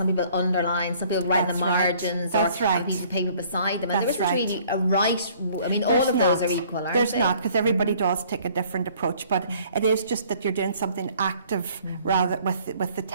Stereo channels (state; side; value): inverted; both; correlation -0.57